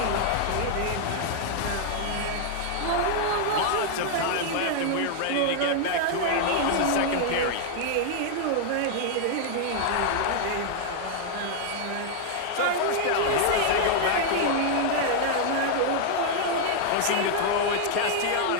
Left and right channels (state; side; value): different; both; correlation 0.00